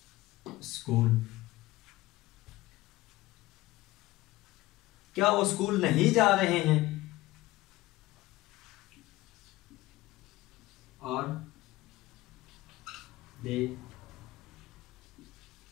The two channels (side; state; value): right; quieter; 18.3 dB